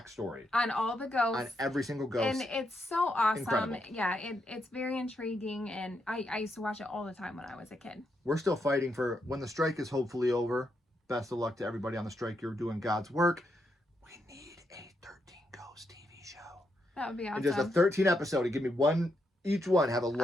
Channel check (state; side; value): normal; both; correlation 0.81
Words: On all the ghosts. on every single ghost. And it's so awesome. Incredible. Yeah, it's very intriguing, and I used to watch it all the time when I was a kid. We're still fighting for when the strike is hopefully over. Best of luck to everybody on the strike. You're doing God's work. We need a 13 Ghost TV show. That would be awesome. And just a 13 episode. Give me one, each one have a